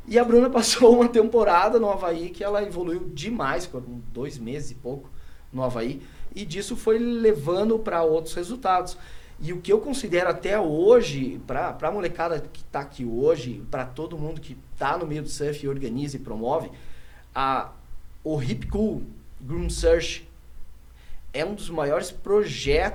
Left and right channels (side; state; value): both; identical; correlation 1.00